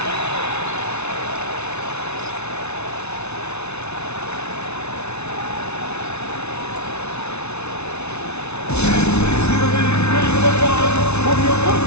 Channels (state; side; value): late; right; 0.81 ms